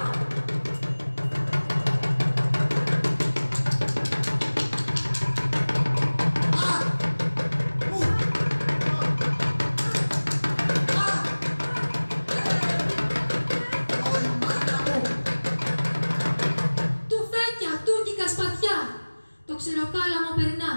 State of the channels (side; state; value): both; inverted; correlation -1.00